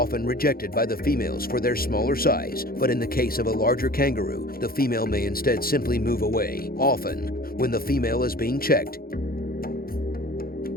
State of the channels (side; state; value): right; late; 0.43 ms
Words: rejected by the females for their smaller size, but in the case of a larger kangaroo, the female may instead simply move away. Often, when the female is being checked,